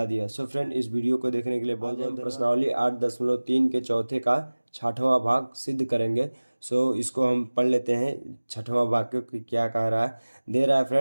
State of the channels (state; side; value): inverted; both; correlation -1.00